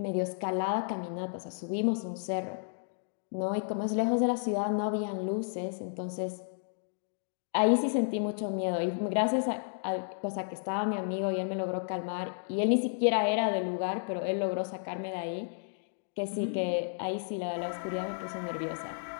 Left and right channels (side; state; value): right; silent; digital silence